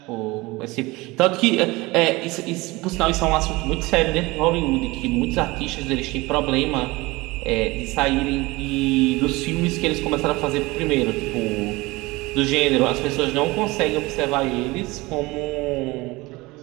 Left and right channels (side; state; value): left; quieter; 22.0 dB